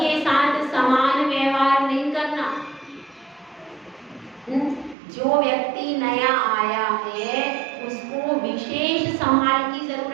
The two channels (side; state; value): left; drops out; at 5.0 s